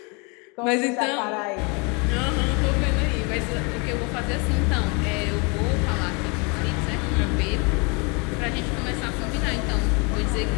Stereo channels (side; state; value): right; quieter; 31.4 dB